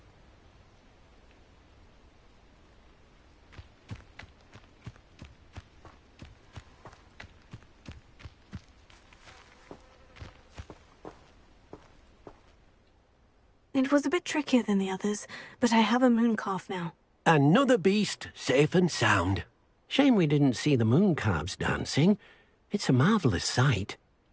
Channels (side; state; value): both; identical; correlation 1.00